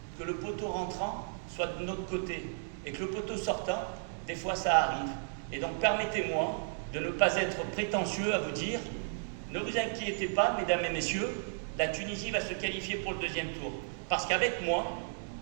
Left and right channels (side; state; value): left; silent; digital silence